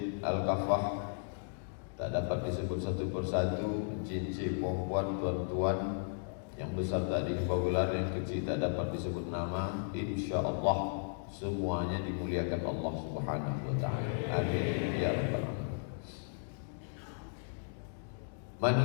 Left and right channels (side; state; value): right; silent; digital silence